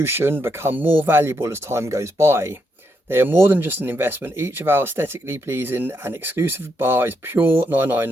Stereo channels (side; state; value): both; normal; correlation 0.79